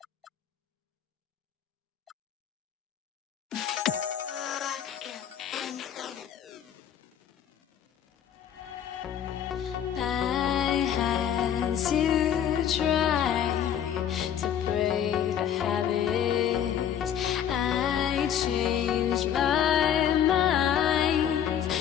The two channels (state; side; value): quieter; right; 9.4 dB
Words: I had to try to break the habit. I changed my mind.